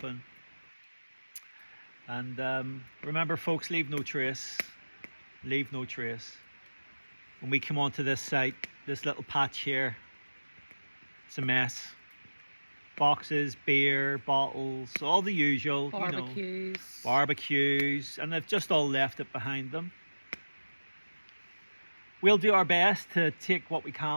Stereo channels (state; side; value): inverted; both; correlation -1.00